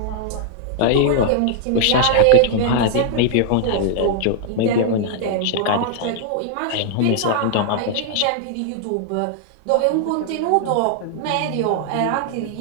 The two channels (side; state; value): both; different; correlation 0.00